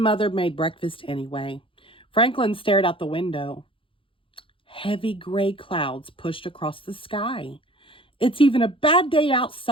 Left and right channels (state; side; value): late; right; 0.25 ms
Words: made breakfast anyway. Franklin stared out the window. Heavy gray clouds pushed across the sky. "It's even a bad day